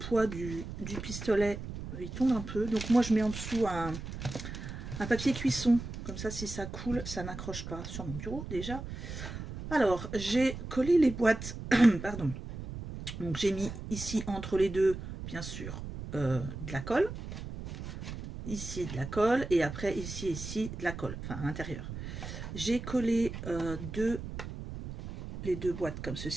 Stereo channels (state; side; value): noise; right; rumble, 8 dB below the sound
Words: du pistolet, il tombe un peu. Donc, moi, je mets en dessous un papier cuisson. Comme ça, si ça coule, ça n'accroche pas sur mon bureau, déjà. Alors, j'ai collé les boîtes. Pardon. Donc, j'ai mis ici, entre les deux, bien sûr, de la colle. Ici, de la colle. Et après, ici, de la colle. Enfin, à l'intérieur. J'ai collé les deux boîtes comme